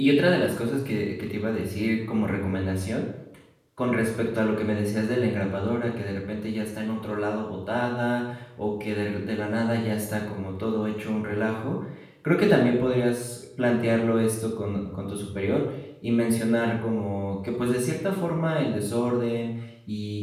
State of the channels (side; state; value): both; identical; correlation 1.00